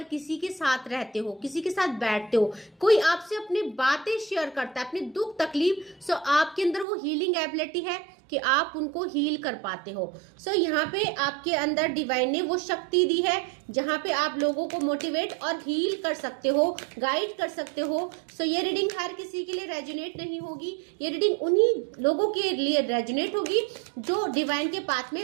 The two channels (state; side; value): drops out; left; at 6.9 s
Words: किसी के साथ रहते हो, किसी के साथ बैठते हो, कोई आपसे अपनी बातें शेयर करता है, अपने दुख तकलीफ, सो आपके अंदर वो हीलिंग एबिलिटी है कि आप उनको हील कर पाते हो। सो यहाँ पे आपके अंदर डिवाइन ने वो शक्ति दी है जहाँ पे आप लोगों को मोटिवेट और हील कर सकते हो, गाइड कर सकते हो। सो ये रीडिंग हर किसी के लिए रेजोनेट नहीं होगी, ये रीडिंग उन्हीं लोगों के लिए रेजोनेट होगी जो डिवाइन के पाथ में